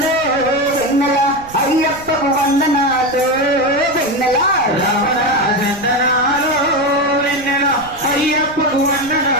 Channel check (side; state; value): right; noise; rumble, 20 dB below the sound